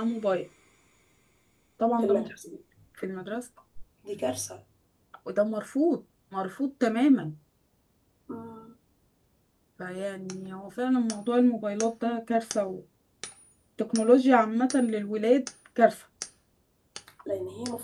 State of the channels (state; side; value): identical; both; correlation 1.00